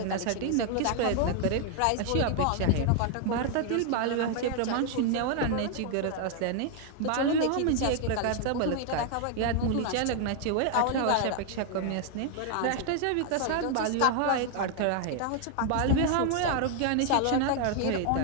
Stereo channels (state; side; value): different; both; correlation 0.00